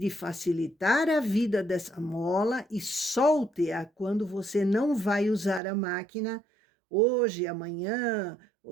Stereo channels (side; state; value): left; drops out; at 5.6 s